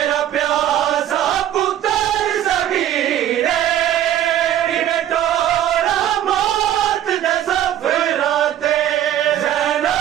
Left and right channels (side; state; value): left; quieter; 11.6 dB